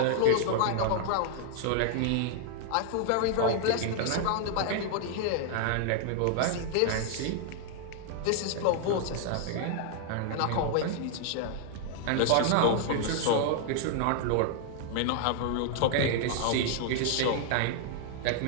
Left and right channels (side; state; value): both; different; correlation 0.00